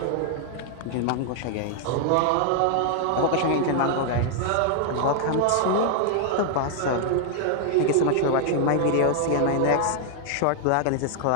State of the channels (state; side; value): different; both; correlation 0.00